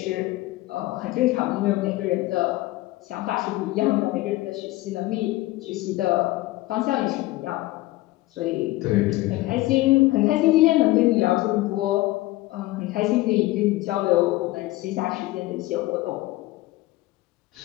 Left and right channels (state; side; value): quieter; right; 18.5 dB